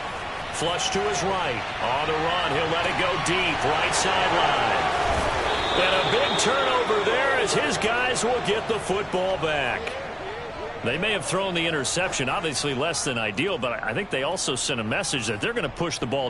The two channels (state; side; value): identical; both; correlation 1.00